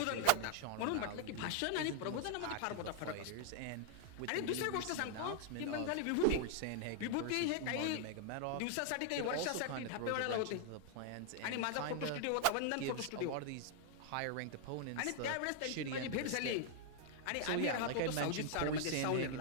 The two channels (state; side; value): different; both; correlation 0.00